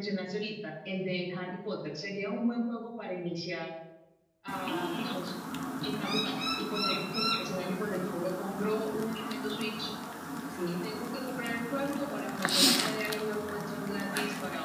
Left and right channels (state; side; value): identical; both; correlation 1.00